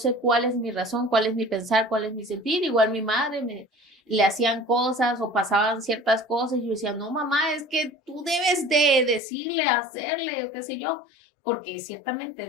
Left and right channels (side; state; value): right; drops out; at 9.2 s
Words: cuál es mi razón, cuál es mi pensar, cuál es mi sentir, igual mi madre le hacían cosas o pasaban ciertas cosas y yo decía, no, mamá, es que tú debes de decirle, hacerle, o qué sé yo, porque ciertamente